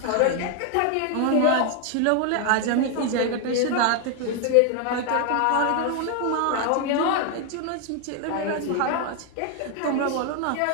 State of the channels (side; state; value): both; different; correlation 0.00